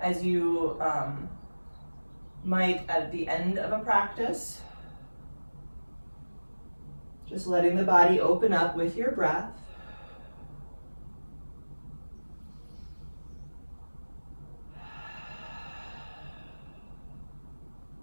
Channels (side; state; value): both; inverted; correlation -1.00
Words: you might at the end of a practice. Just letting the body open up with your breath.